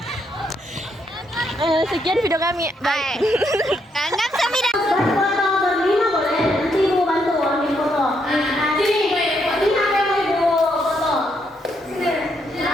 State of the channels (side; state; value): both; normal; correlation 0.76